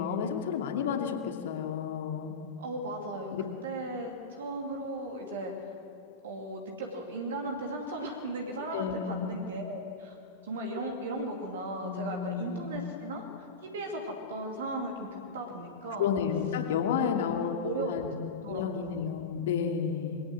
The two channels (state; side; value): quieter; right; 3.6 dB